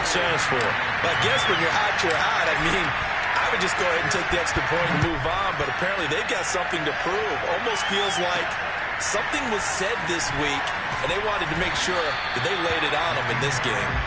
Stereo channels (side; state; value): both; identical; correlation 1.00